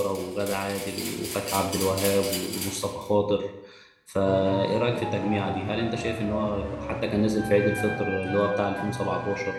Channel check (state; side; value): identical; both; correlation 1.00